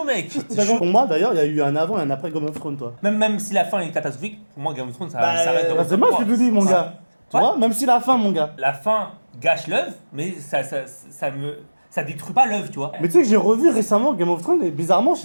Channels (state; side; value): inverted; both; correlation -1.00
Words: mec. T'as compris. Pour moi, d'ailleurs, il y a eu un avant et un après Game of Thrones, toi. Même si la fin est catastrophique, pour moi, Game of Thrones, ça Bah, reste dans Bah, c'est moi qui te dis, mon Ouais. gars. Tu Ouais. vois, même si la fin, mon gars. La fin gâche l'œuvre, mais ça détruit pas l'œuvre, tu vois. Mais tu sais que j'ai revu récemment Game of Thrones et bizarrement, je